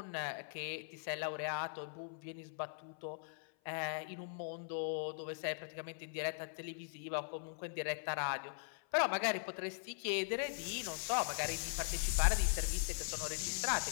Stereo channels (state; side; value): silent; right; 51 dB below the other